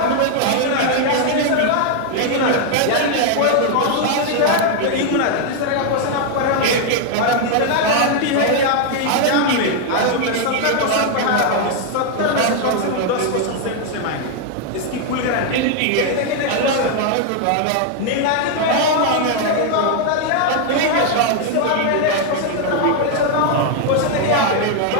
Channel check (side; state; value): both; different; correlation 0.00